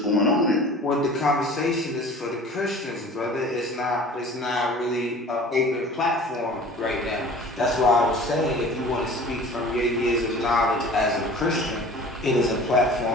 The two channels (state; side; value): normal; both; correlation 0.43